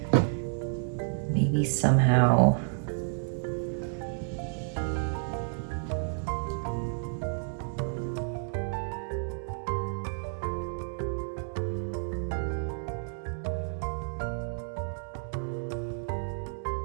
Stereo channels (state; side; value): silent; left; digital silence